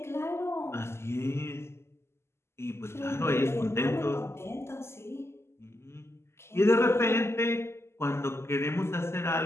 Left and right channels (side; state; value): right; late; 0.12 ms